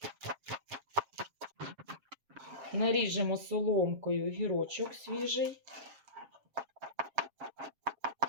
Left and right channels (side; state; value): left; late; 7.4 ms